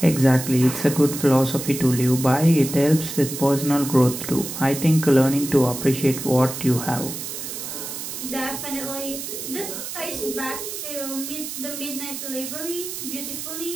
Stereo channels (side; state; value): right; noise; hiss, 7 dB below the sound